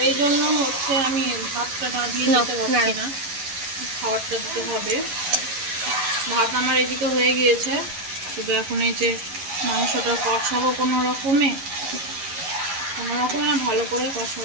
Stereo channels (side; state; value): left; late; 11 ms